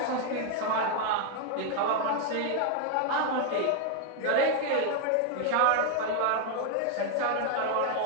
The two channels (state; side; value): different; both; correlation 0.00